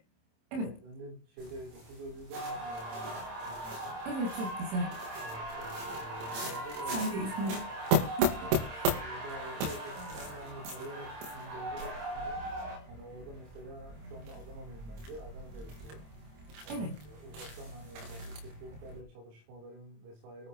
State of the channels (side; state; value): left; late; 26 ms